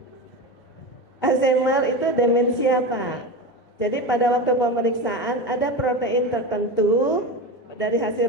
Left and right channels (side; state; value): both; normal; correlation 0.22